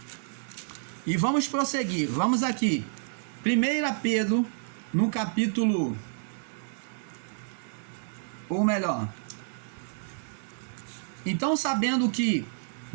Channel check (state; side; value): silent; left; digital silence